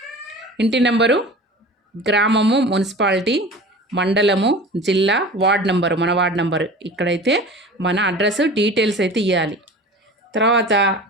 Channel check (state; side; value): normal; both; correlation 0.38